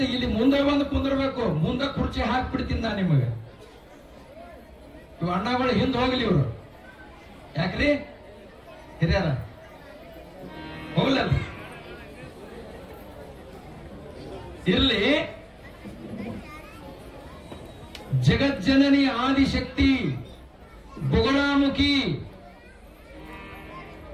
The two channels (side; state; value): both; identical; correlation 1.00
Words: ಇಲ್ಲಿ ಮುಂದೆ ಬಂದು ಕುಂದಿರ್ಬೇಕು. ಮುಂದೆ ಕುರ್ಚಿ ಹಾಕ್ಬಿಡ್ತೀನಿ ನಾ ನಿಮಗೆ. ಇವ್ ಅಣ್ಣಗಳು ಹಿಂದೆ ಹೋಗ್ಲಿ. ಇವರು ಯಾಕ್ರಿ ಹಿರಿಯರ ಹೋಗ್ಲಲ್ಲ. ಇರ್ಲಿ. ಜಗಜ್ಜನನಿ ಆದಿಶಕ್ತಿ ಬೊಗಳಾಮುಖಿ